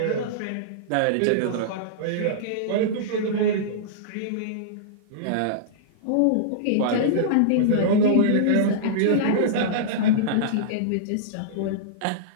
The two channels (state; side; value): different; both; correlation -0.02